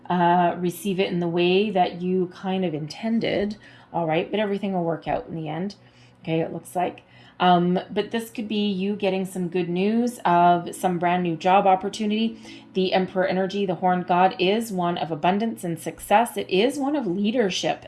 receive it in the way that you kind of intended. All right, but everything will work out in the end. Okay, it looks like. But this could be you getting some good news of some brand new job opportunity. The Emperor energy, the Horned God, is one of abundance and success. It is one of leadership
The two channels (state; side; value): identical; both; correlation 1.00